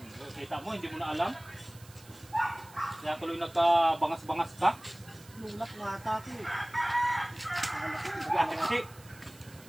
Kita mo, hindi mo na alam. Kaya tuloy nagkabangas-bangas ka. Tinulak mo ata ako eh. Kasi,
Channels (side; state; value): right; noise; hiss, 22 dB below the sound